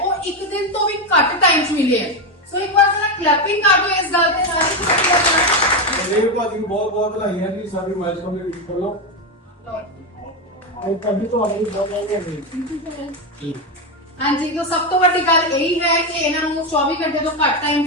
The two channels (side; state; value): both; normal; correlation 0.10